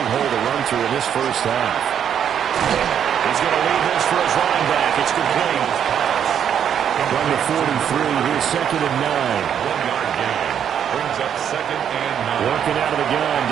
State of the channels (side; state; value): left; quieter; 8.8 dB